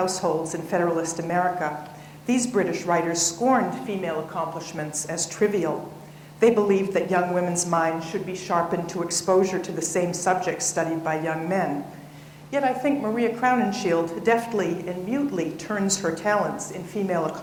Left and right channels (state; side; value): identical; both; correlation 1.00